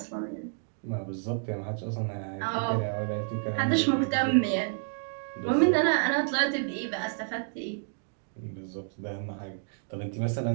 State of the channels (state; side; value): silent; left; digital silence